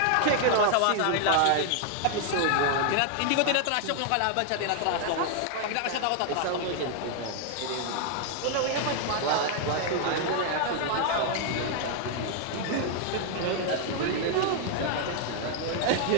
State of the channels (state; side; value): different; both; correlation 0.00